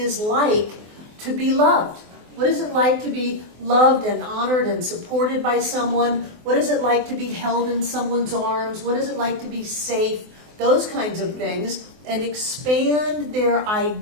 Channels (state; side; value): late; left; 24 ms